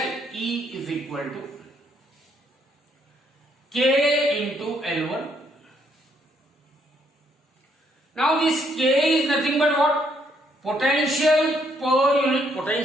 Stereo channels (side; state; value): both; normal; correlation 0.71